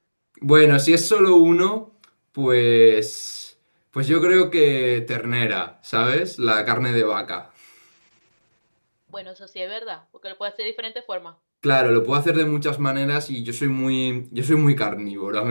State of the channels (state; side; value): inverted; both; correlation -1.00